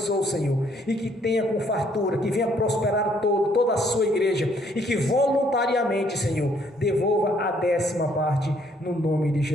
Senhor. E que tenha com fartura, que venha prosperar toda a sua igreja. E que voluntariamente, Senhor, devolva a 10ª parte no nome de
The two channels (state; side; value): normal; both; correlation 0.66